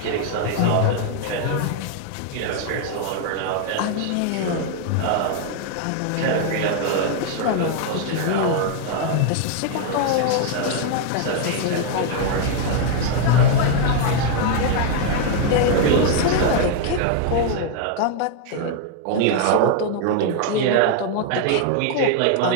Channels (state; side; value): different; both; correlation 0.00